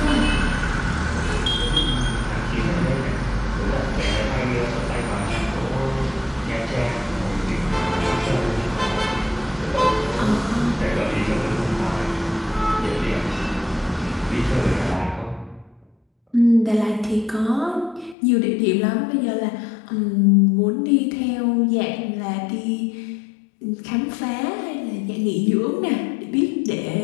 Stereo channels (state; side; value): drops out; right; at 18.2 s